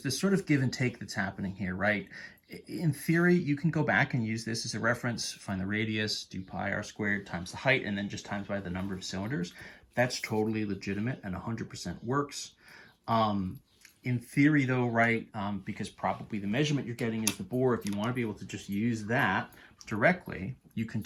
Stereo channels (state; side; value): identical; both; correlation 1.00